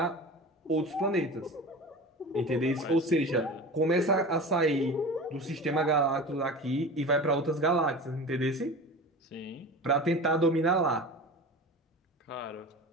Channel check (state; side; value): normal; both; correlation 0.33